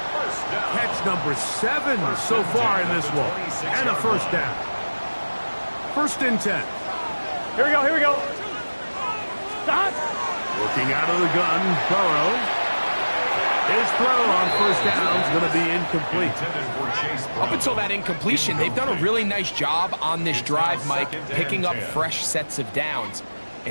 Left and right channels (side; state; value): both; inverted; correlation -1.00